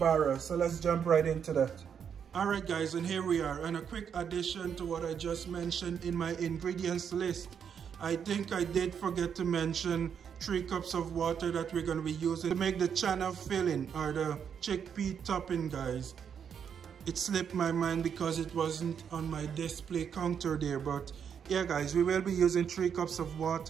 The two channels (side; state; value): left; quieter; 7.6 dB